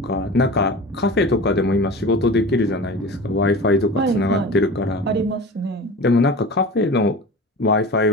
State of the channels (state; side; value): normal; both; correlation 0.35